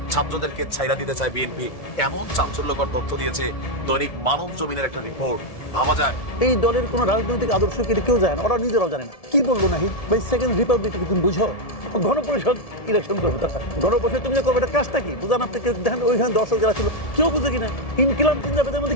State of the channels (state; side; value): late; right; 1.7 ms